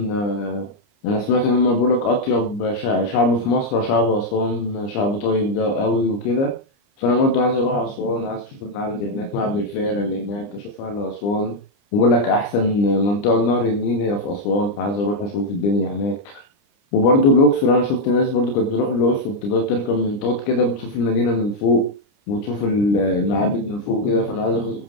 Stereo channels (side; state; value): right; late; 29 ms